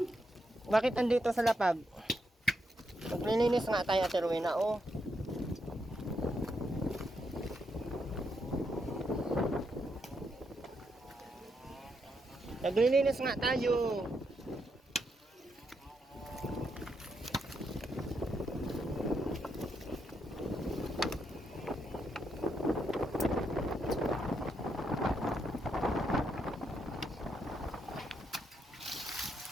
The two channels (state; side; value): normal; both; correlation 0.80